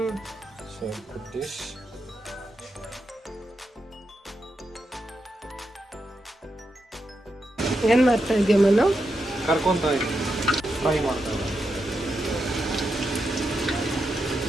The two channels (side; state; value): both; normal; correlation 0.85